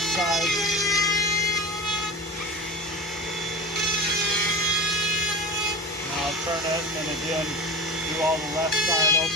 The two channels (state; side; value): normal; both; correlation 0.31